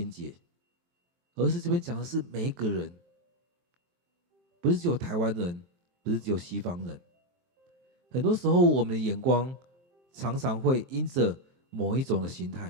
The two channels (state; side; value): late; left; 23 ms